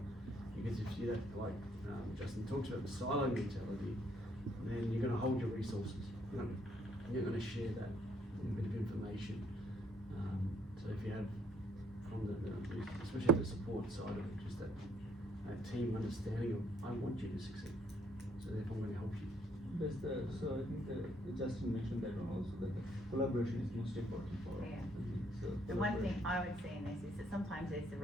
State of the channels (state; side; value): normal; both; correlation 0.67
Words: Because if you that, like Justin talks about the silo mentality, then you're going to hold your resources. You're going to share that bit of information. So if you have from especially the support side of it, just that team understanding of I want you to succeed, so therefore I'm going to help you. That's so I think Justin mentioned that one also, that the collaboration is most important for us. Yeah. So The one collaboration. thing I would see in this is that sometimes there's the